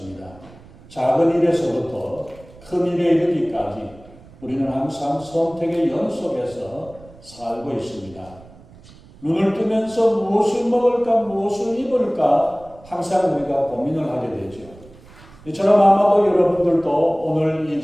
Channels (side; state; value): right; noise; rumble, 22 dB below the sound